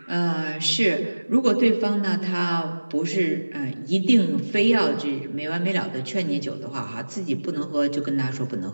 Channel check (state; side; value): inverted; both; correlation -1.00